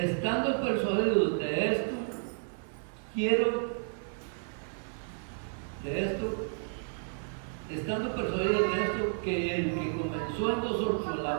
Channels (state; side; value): silent; left; 57 dB below the other